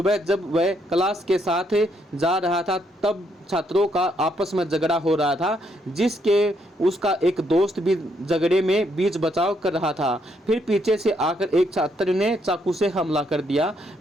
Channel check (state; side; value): normal; both; correlation 0.74